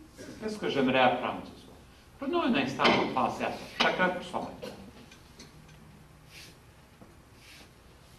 Qu'est-ce que j'aimerais apprendre ce soir? Prenons un instant pour penser à ça. Chacun pour soi-même.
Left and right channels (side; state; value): both; identical; correlation 1.00